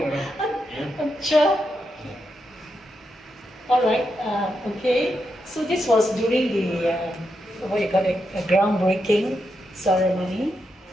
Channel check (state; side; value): normal; both; correlation 0.84